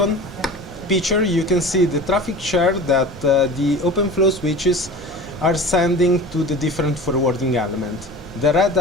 picture you can see the traffic share that the OpenFlow switches are sending to the different forwarding element. The red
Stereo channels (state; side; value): normal; both; correlation 0.36